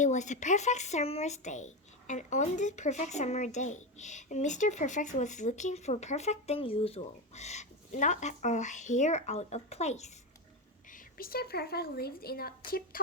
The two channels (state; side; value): normal; both; correlation 0.14